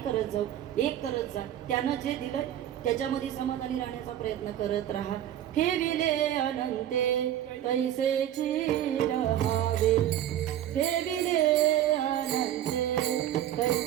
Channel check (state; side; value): quieter; left; 11.6 dB